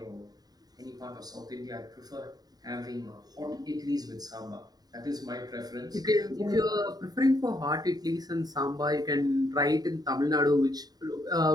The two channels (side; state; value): left; late; 0.19 ms